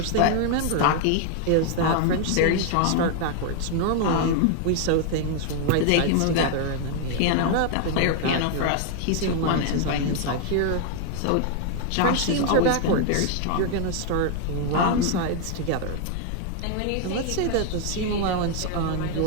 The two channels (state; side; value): different; both; correlation 0.00